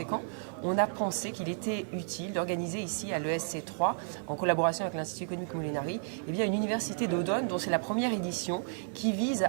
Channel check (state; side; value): silent; left; digital silence